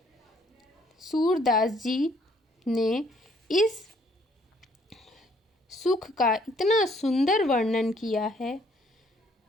सूरदास जी ने इस सुख का इतना सुंदर वर्णन किया है।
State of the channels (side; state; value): both; normal; correlation 0.65